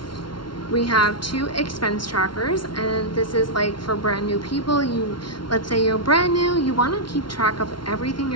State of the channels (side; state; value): right; late; 0.73 ms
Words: We have 2 expense trackers, and this is like for brand new people. Let's say you're brand new, you want to keep track of everything